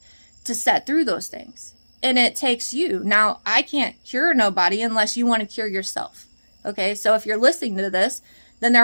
to set through those things. And it takes you. Now, I can't cure nobody unless you want to cure yourself. Okay, so if you're listening to this, then there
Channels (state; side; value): inverted; both; correlation -1.00